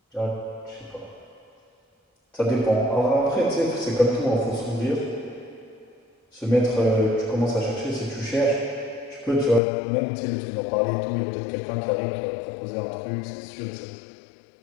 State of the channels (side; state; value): right; drops out; at 9.6 s